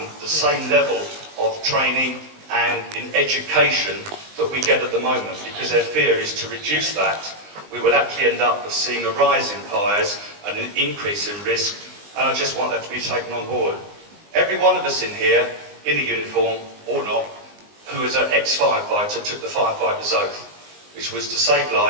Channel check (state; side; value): late; left; 19 ms